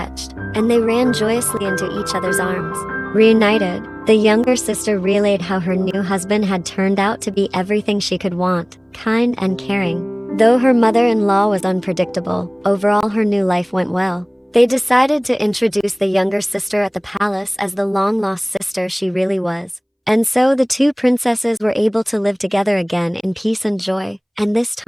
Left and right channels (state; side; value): identical; both; correlation 1.00